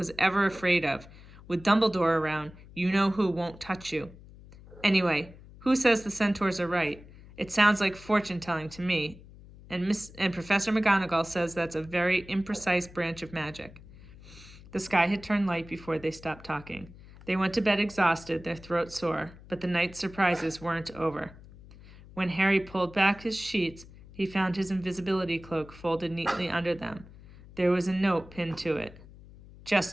ever afraid of. With Dumbledore around, you know who won't touch you. Anyway, who says the centaurs are right? It sounds like fortune-telling to me. And Professor McGonagall says that's a very imprecise branch of magic. The sky had turned light before they stopped talking. They went to bed exhausted, their throats sore, but the night's surprises weren't over. When Harry pulled back his sheets, he found his invisibility cloak folded neatly under them. There was a note pinned to it.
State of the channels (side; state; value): left; noise; hum, 20 dB below the sound